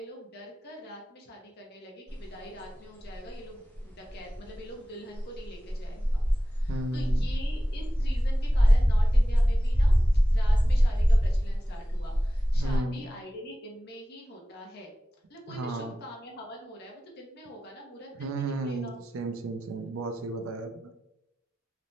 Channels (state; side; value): normal; both; correlation 0.96